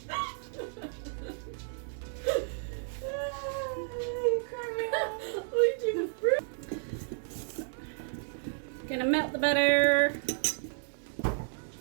Gonna melt the butter. I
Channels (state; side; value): silent; left; digital silence